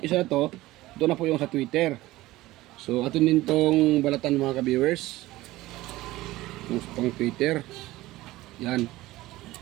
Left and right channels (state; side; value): quieter; left; 17.7 dB